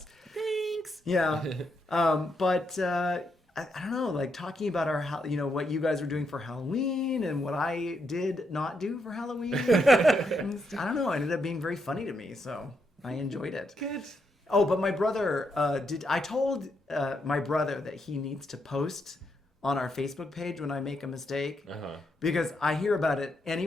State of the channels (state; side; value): normal; both; correlation 0.79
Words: Thanks. Yeah. But I don't know, like talking about what you guys were doing for Halloween and what I did not do for Halloween. I don't know. It ended up being very funny to me, so I enjoyed it. Good. Oh, but my brother I told my brother that he needs to post on our Facebook page when I make a mistake because I hear about it